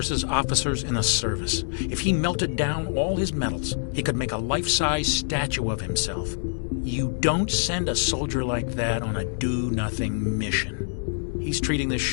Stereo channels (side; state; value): right; silent; digital silence